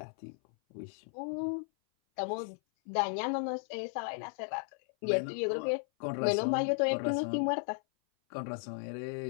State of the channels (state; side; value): silent; right; 55 dB below the other